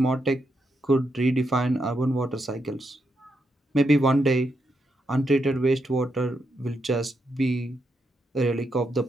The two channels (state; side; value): normal; both; correlation 0.82